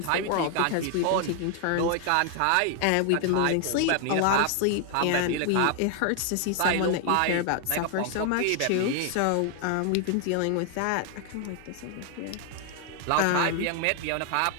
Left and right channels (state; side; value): different; both; correlation 0.00